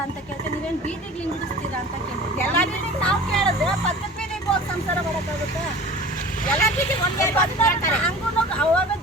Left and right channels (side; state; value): both; normal; correlation 0.40